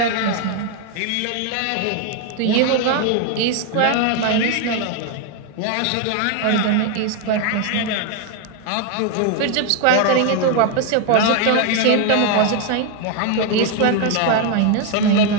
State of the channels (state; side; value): different; both; correlation 0.01